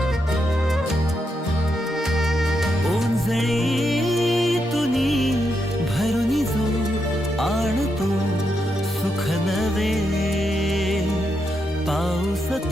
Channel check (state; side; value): normal; both; correlation 0.83